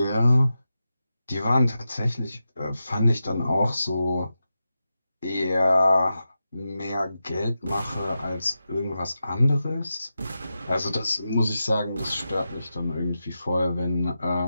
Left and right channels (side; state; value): both; inverted; correlation -0.90